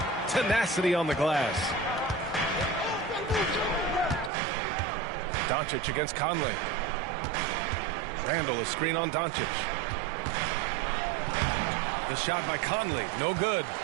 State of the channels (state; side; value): drops out; left; at 4.3 s